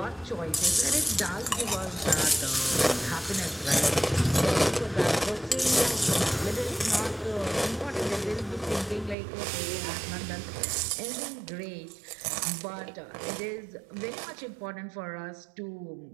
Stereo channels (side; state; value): left; drops out; at 9.2 s